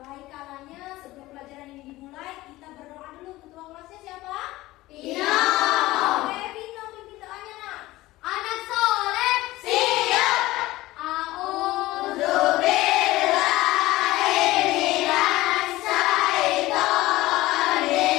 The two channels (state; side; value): quieter; right; 18.0 dB